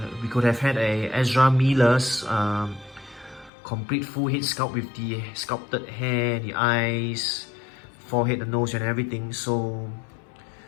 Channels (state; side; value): drops out; right; at 3.5 s